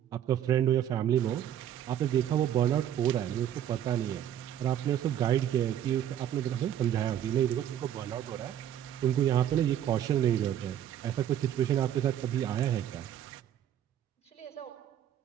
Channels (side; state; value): left; quieter; 10.6 dB